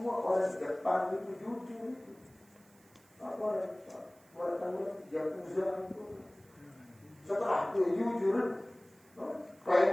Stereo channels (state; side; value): noise; right; hiss, 29 dB below the sound